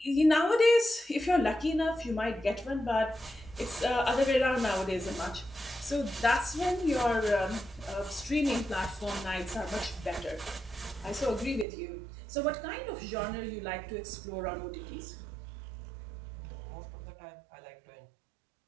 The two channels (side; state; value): left; drops out; at 11.7 s